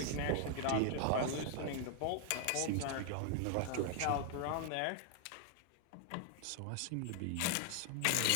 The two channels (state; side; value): different; both; correlation 0.00